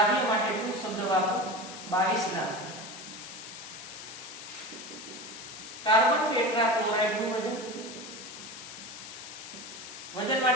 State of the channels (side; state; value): left; noise; hiss, 12 dB below the sound